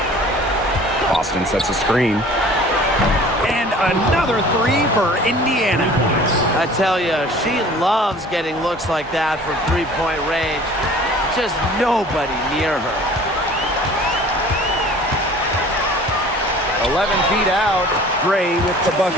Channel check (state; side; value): normal; both; correlation 0.47